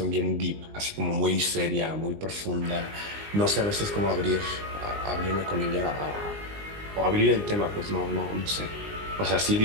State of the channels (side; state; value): left; late; 19 ms